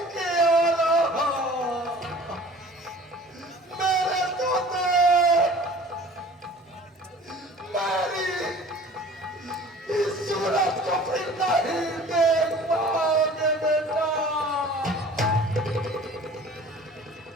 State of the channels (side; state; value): both; normal; correlation 0.46